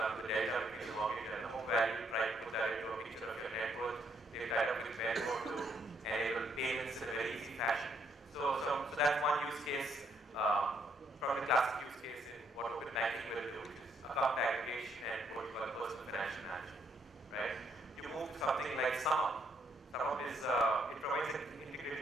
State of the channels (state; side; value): normal; both; correlation 0.71